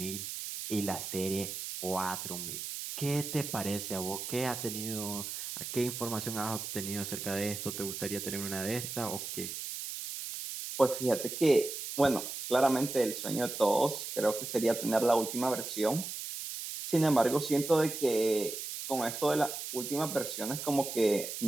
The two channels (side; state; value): right; noise; hiss, 6 dB below the sound